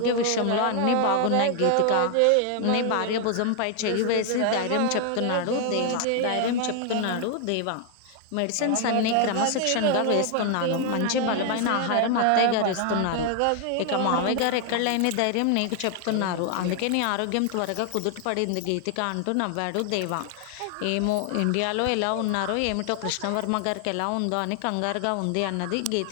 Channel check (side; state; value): both; different; correlation 0.00